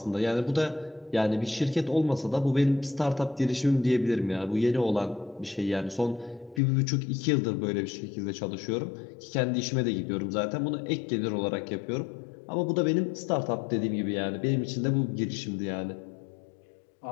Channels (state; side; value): drops out; right; at 6.6 s